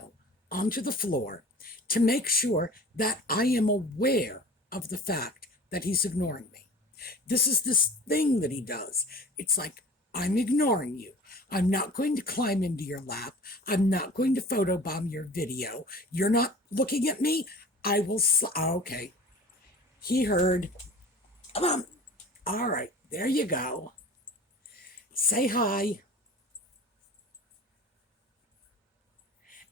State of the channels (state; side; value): normal; both; correlation 0.41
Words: onto the floor to make sure that I am aware of the fact that he's ignoring me. This is this thing that he does. It's like, I'm ignoring you. I'm not going to climb into your lap. I'm not going to photobomb your video. You're not looking at me. I will. Okay. He heard. Come on. All right. There you go. Say hi.